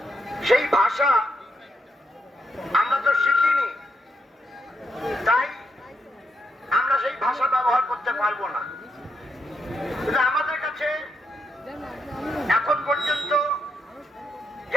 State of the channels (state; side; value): normal; both; correlation 0.80